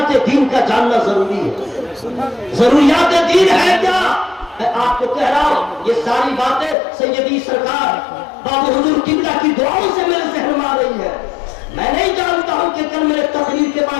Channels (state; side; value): drops out; right; at 6.8 s